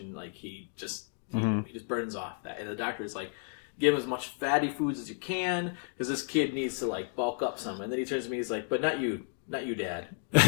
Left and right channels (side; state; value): right; silent; 56 dB below the other